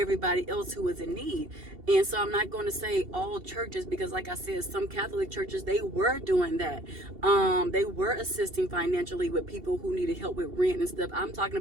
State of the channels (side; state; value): left; late; 2.7 ms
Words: else who was in need. And so I'm not going to say all churches, because like I said, some Catholic churches, they were doing that. They were assisting financially with people who needed help with rent and stuff. I'm talking